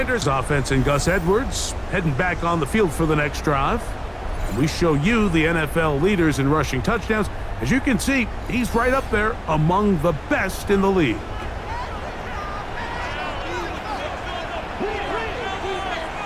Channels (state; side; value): identical; both; correlation 1.00